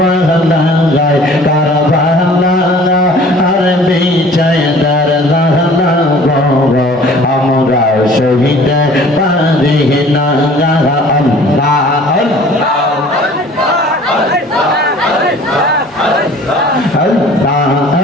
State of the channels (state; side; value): normal; both; correlation 0.49